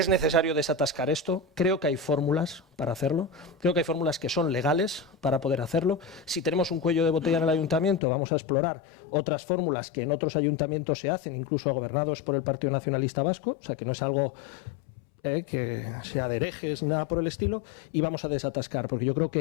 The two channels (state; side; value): drops out; right; at 8.0 s